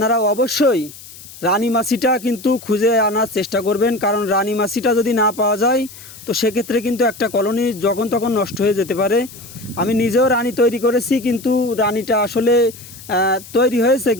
অবশ্যই রানী মাছিটা কিন্তু খুঁজে আনার চেষ্টা করবেন, কারণ রানী মাছিটা যদি না পাওয়া যায় তো সেক্ষেত্রে কিন্তু একটা কলোনি যখন তখন নষ্ট হয়ে যেতে পারে। আমি নিজেও রানী তৈরি করেছি, কিন্তু রানীটা আসলে তৈরি হয়েছে,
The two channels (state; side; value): noise; left; hiss, 18 dB below the sound